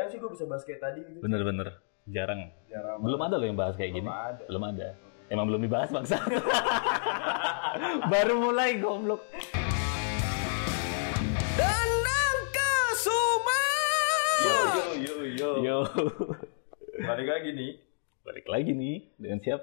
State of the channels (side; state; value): right; silent; digital silence